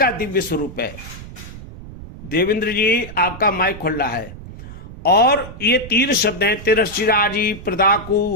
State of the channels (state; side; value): noise; right; rumble, 14 dB below the sound